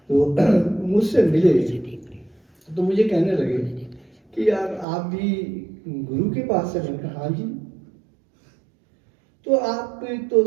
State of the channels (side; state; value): left; drops out; at 4.9 s